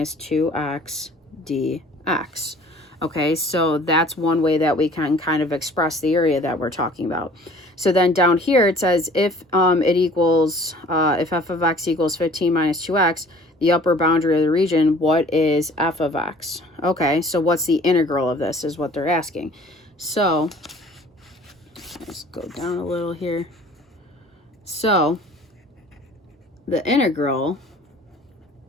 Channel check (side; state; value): both; normal; correlation 0.50